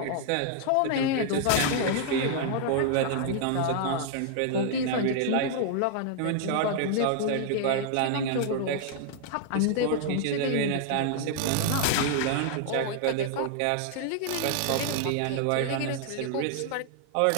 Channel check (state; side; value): different; both; correlation -0.01